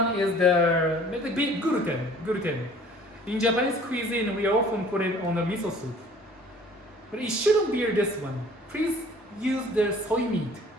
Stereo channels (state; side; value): normal; both; correlation 0.51